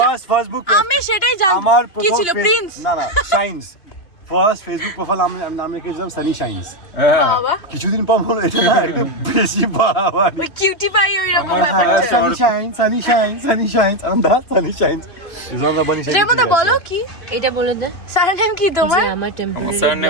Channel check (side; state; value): right; late; 3.1 ms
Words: জান- ফার্স্ট বুক, আমি সেটাই জানি আমার কি প্রথম ছিল প্রিন্স না না সায়েন্স ফার্স্ট ফেসবুক প্রোফাইল আমি নাম রেখেছিলাম সানি শাইন্স। বাবা কিছুদিন পর বলো এটা না একটু বেশি বাড়াবাড়ি। ওই কিউটি পাই ওই রকম আমার ব্যাপার higher Sunny shines, sunny shines, sunny shines on the sunny shines. Is on the bunny shines. রেমতা বলো কি এটা বলে দে সারনেম কি তোমার যে আমার টেম্পোরারি আমার